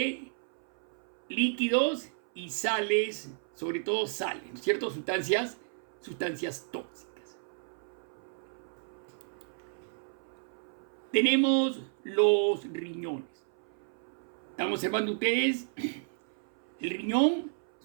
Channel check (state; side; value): silent; left; 56 dB below the other